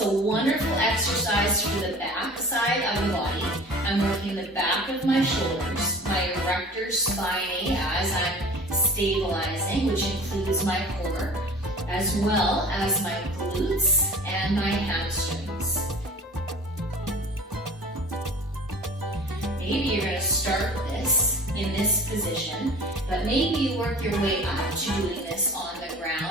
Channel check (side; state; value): both; normal; correlation 0.42